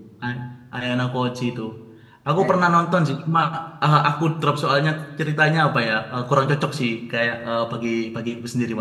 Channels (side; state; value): both; identical; correlation 1.00